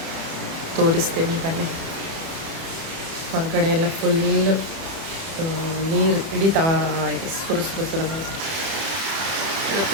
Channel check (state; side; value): late; left; 31 ms